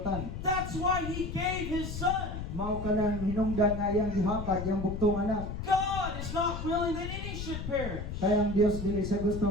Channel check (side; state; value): left; noise; rumble, 6 dB below the sound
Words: That's why he gave his son. Mao kanang hinungdan nga iyang gihatag iyang buktong anak. God is not willing that any should perish. Kaya ang Dios dili sa gusto